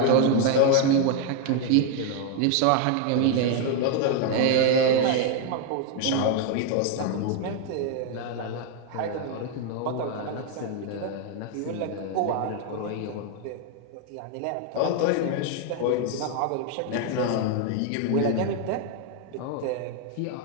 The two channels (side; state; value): both; different; correlation 0.00